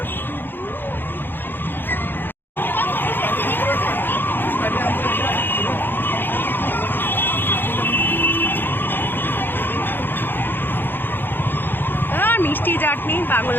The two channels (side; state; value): right; late; 0.097 ms